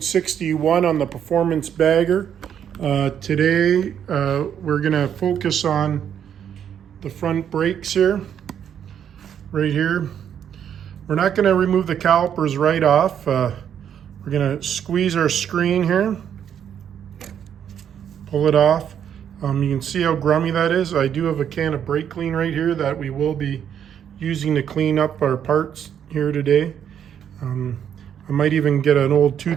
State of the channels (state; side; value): quieter; left; 8.9 dB